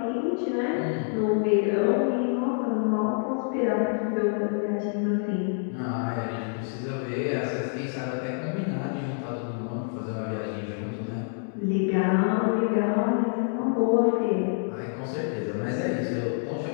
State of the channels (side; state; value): right; silent; 60 dB below the other